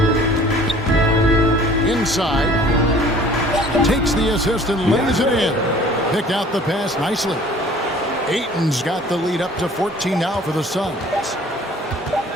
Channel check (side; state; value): both; normal; correlation 0.51